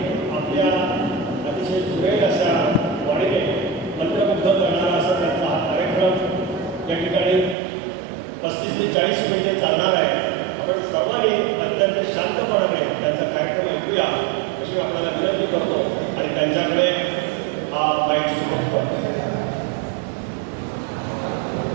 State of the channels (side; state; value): left; drops out; at 7.6 s